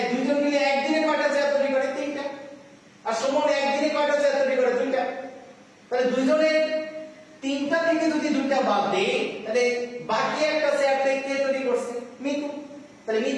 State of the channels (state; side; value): identical; both; correlation 1.00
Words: দুইজন মিলে একদিনে কয়টা চেয়ার তৈরি করে? 3টা। আর সুমন একদিনে কয়টা চেয়ার তৈরি করে? 2টা। তাহলে দুইজনের 3টা থেকে যদি 2টা বাদ দেই, তাহলে বাকি একটা চেয়ার কে তৈরি করছে? মিতু। তাহলে